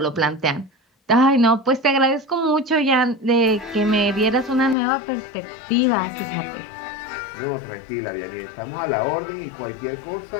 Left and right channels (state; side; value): drops out; right; at 4.8 s